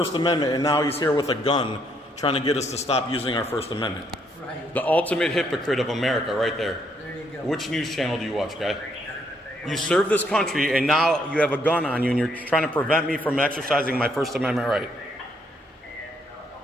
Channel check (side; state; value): both; normal; correlation 0.71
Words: Amendment, and now he's here with a gun trying to get us to stop using our First Amendment. Right. The ultimate hypocrite of America right there. There you go. Which news channel do you watch, guy? You serve this country, and now you have a gun on you, and you're trying to prevent me from exercising my First Amendment right.